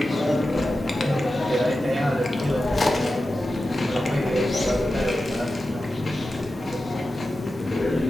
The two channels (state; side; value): normal; both; correlation 0.92